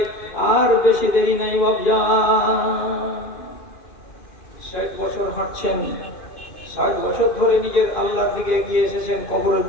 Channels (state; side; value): late; right; 2.5 ms